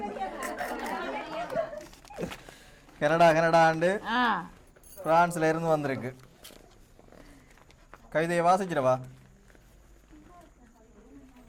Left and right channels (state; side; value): identical; both; correlation 1.00